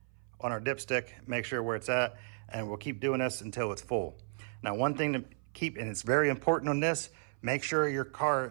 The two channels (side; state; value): left; silent; 55 dB below the other